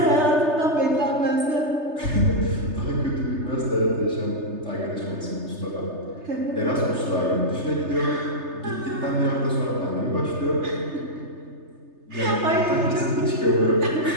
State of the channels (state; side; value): late; left; 3.3 ms